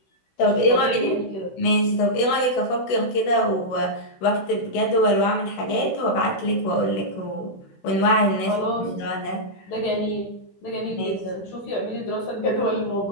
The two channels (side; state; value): right; late; 16 ms